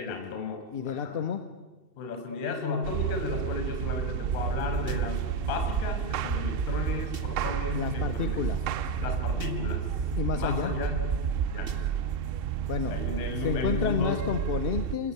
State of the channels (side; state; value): left; late; 2.7 ms